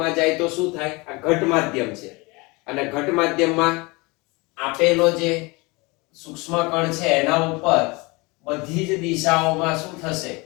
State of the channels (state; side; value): quieter; right; 25.8 dB